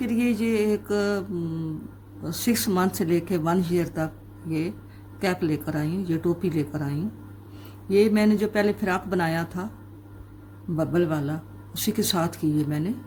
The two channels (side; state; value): both; identical; correlation 1.00